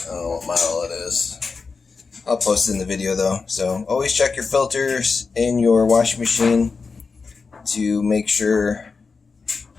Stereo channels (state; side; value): quieter; right; 4.7 dB